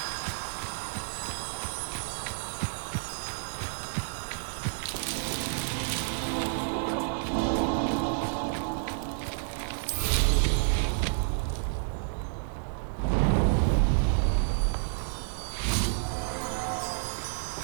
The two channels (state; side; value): silent; left; digital silence